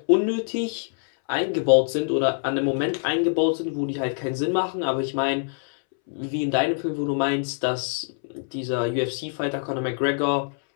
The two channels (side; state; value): right; silent; 62 dB below the other